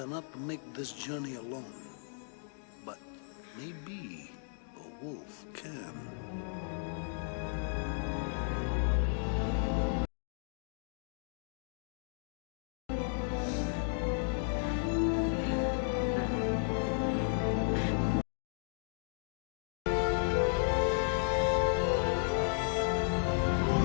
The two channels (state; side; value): silent; right; digital silence